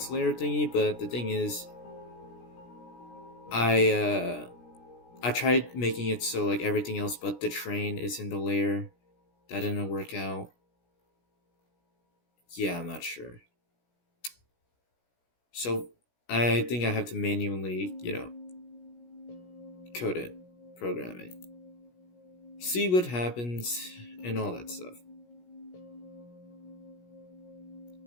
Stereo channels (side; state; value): right; late; 17 ms